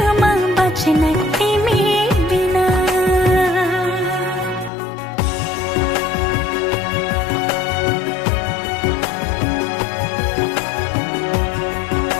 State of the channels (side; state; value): right; drops out; at 4.7 s